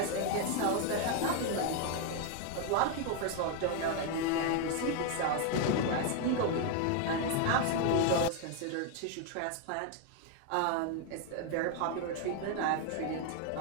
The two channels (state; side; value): different; both; correlation 0.01